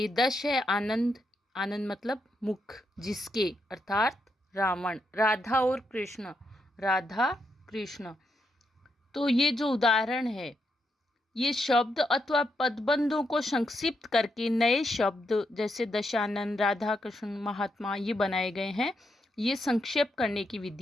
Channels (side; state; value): both; normal; correlation 0.81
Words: दश है आनंद। आनंद मतलब मुख, जिसके, अर्थात रावण। राधा और कृष्ण, राधा कृष्ण। तो ये जो उदाहरण है, ये शब्द अथवा पदबंधों को संक्षिप्त करके नए शब्द जैसे दशानंद, राधा कृष्ण, महात्मा ये बनाए गए हैं। ये संक्षेप करने की